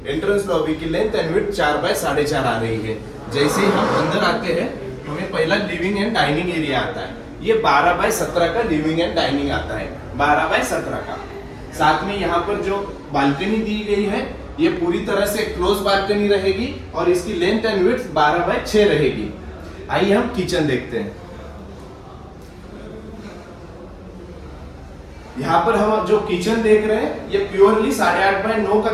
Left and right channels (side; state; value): both; identical; correlation 1.00